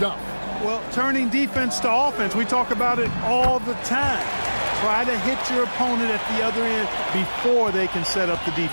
Well, turning defense to offense, we talk about it all the time. Try to hit your opponent at the other end before they can set up the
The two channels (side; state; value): both; inverted; correlation -1.00